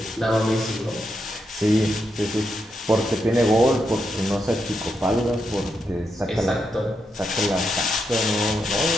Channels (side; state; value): both; normal; correlation 0.83